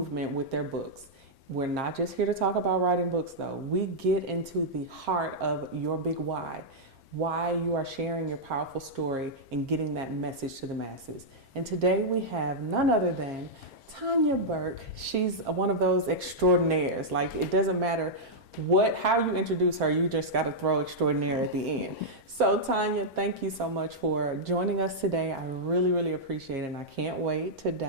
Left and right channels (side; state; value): left; late; 4.4 ms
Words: with their books. We're not just here to talk about writing books though. We get into the heart of your big why you are sharing your powerful story and getting that message to the masses. And today we have none other than Tanya Burke. She's one of those extraordinaires. Like, it doesn't matter how you introduce her, you just got to throw extraordinaire at the end. So Tanya, thank you so much for joining us today. I really, really appreciate it. And I can't wait to